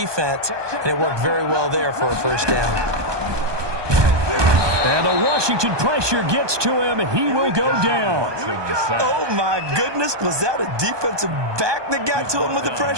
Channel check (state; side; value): late; left; 1.2 ms